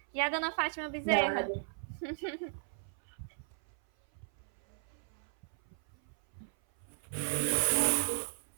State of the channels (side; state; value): left; silent; 54 dB below the other